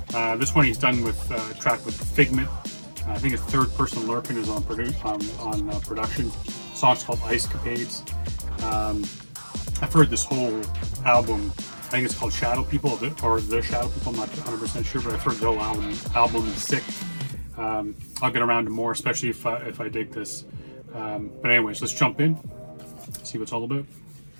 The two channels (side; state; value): both; inverted; correlation -1.00